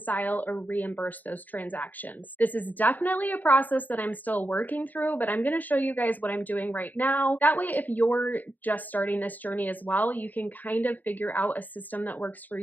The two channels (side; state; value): right; late; 0.083 ms